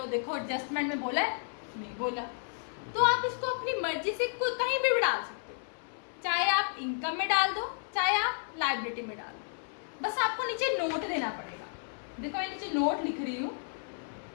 देखो एडजस्टमेंट में बोला है, नहीं बोला, तो आप इसको अपनी मर्जी से कहीं भी डाल सकते हो, चाहे आप इनकम में डाल दो, चाहे आप लायबिलिटी में डाल दो, बस आपको नीचे नोट देना पड़ेगा। देखो मैं नीचे नोट लिख रही हूँ,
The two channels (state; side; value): silent; right; 56 dB below the other